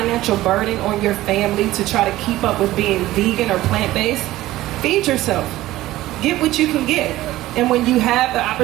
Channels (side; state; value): left; quieter; 16.1 dB